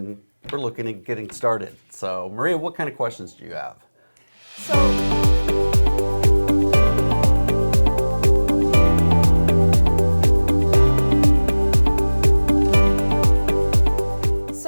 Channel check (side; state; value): both; inverted; correlation -1.00